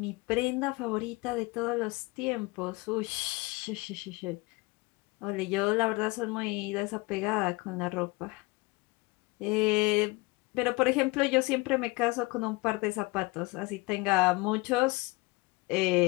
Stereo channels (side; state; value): right; quieter; 24.7 dB